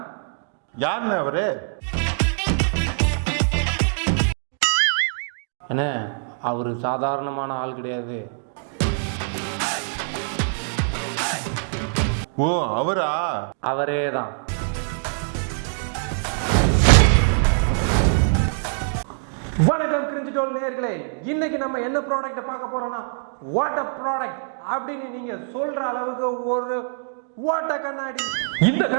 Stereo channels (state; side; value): silent; left; digital silence